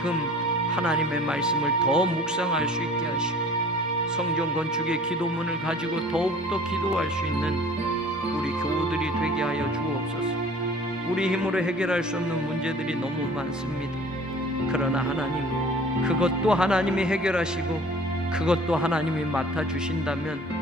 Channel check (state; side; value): normal; both; correlation 0.47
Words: 하나님의 말씀을 더 묵상할 수 있게 하시고 성전 건축의 기도문을 가지고 더욱더 기도할 수 있는 우리 교우들이 되게 하여 주옵소서. 우리 힘으로 해결할 수 없는 문제들이 너무 많습니다. 그러나 하나님 그것도 하나님이 해결하시고 그것도 하나님이